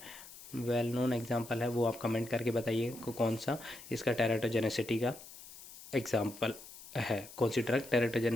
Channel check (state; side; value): noise; left; hiss, 16 dB below the sound